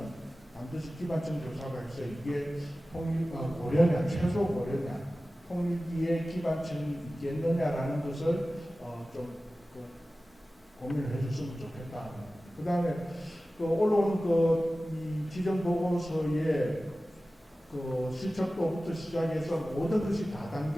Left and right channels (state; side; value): normal; both; correlation 0.96